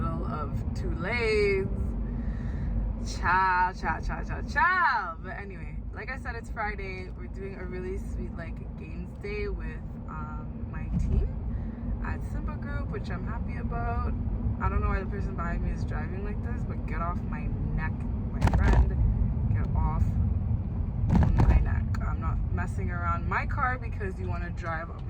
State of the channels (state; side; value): identical; both; correlation 1.00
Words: of 2 lanes. Ciao. But anyway, like I said, it's Friday. We're doing a really sweet, like, games day with my team at Simba Group, which I'm happy about. I don't know why the person behind me is driving like this, but get off my neck, my friend. Get off my neck. I'm not messing around my car because you want to drive up